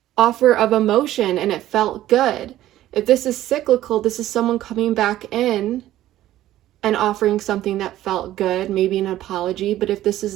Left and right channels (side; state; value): left; quieter; 13.9 dB